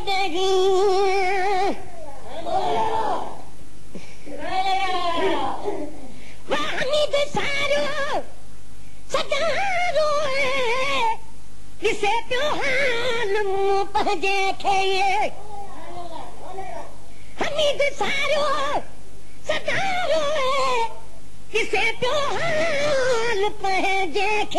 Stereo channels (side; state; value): both; identical; correlation 1.00